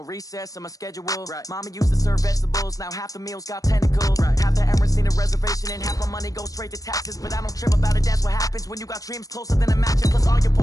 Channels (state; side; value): late; right; 0.17 ms